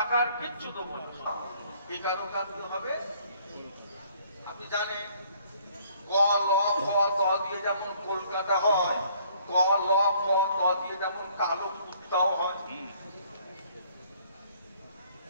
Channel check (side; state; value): both; inverted; correlation -0.61